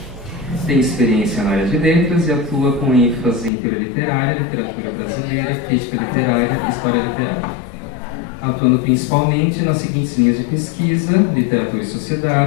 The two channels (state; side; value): drops out; right; at 3.5 s